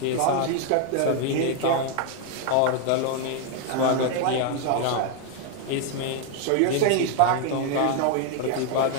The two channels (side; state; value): both; different; correlation 0.01